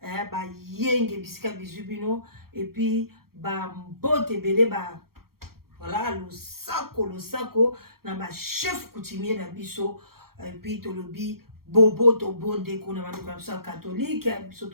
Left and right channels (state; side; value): late; left; 0.94 ms